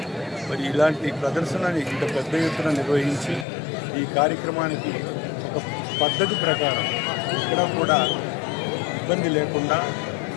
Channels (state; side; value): drops out; right; at 3.5 s